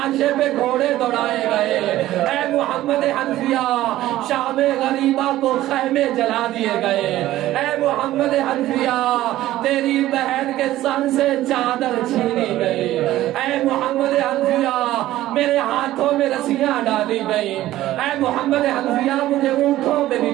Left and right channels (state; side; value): quieter; left; 14.9 dB